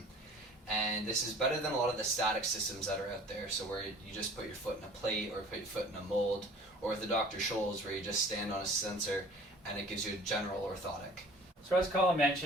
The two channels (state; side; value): normal; both; correlation 0.47